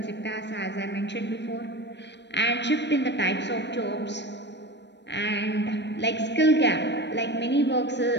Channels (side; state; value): right; late; 0.51 ms